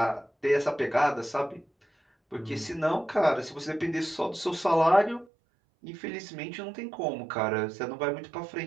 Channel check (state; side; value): drops out; left; at 5.2 s